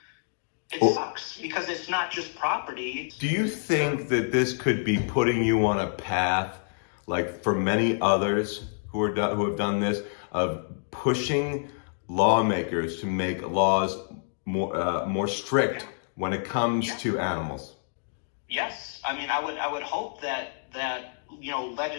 It sucks because it's not just property. Do you think that this could be putting you on a path, like for many others who have done this, of pushing lawmakers to make laws more strict when it comes to animals? Yes, I mean, I would hope that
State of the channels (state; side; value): silent; right; digital silence